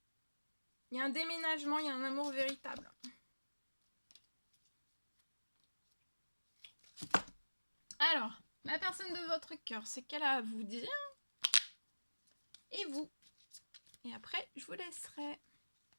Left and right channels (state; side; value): inverted; both; correlation -1.00